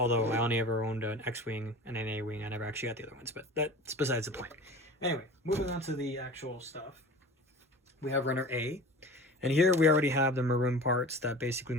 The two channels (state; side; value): normal; both; correlation 0.38